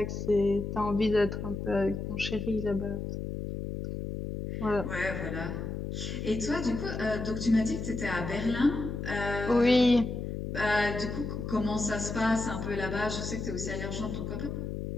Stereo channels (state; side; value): noise; left; hum, 5 dB below the sound